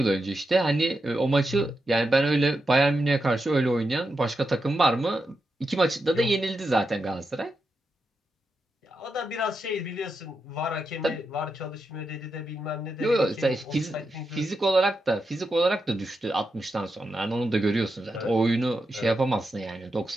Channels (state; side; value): normal; both; correlation 0.86